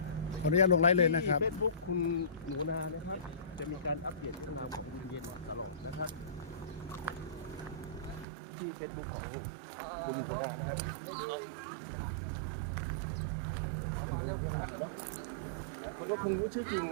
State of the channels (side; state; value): left; drops out; at 8.2 s